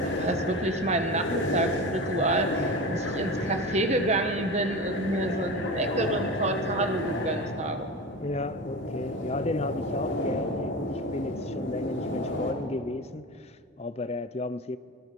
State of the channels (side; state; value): both; normal; correlation 0.27